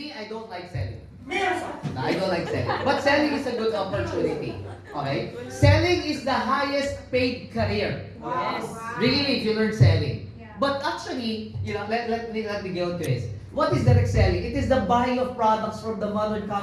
I don't like selling. Yes! I don't like selling. But selling is a good opportunity. Okay? Selling is the highest paid career. Wow. Really, if you learn selling. Yeah. But actually, let me go to this. What is direct selling? It is the buying of products from the mother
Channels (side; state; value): both; identical; correlation 1.00